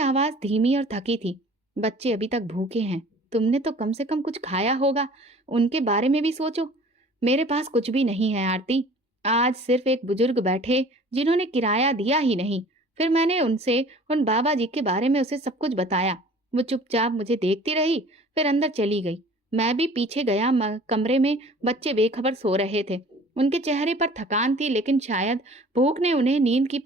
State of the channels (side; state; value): both; normal; correlation 0.48